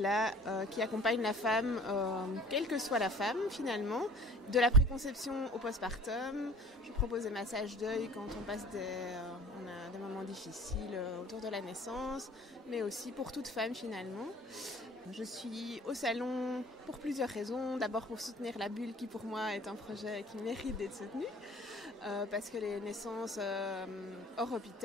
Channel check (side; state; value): both; normal; correlation 0.48